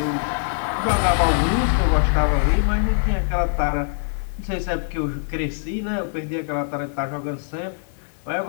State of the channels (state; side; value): silent; right; 64 dB below the other